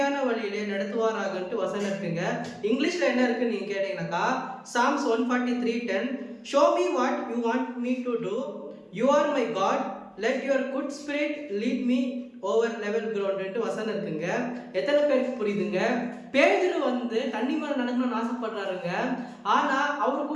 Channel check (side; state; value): both; identical; correlation 1.00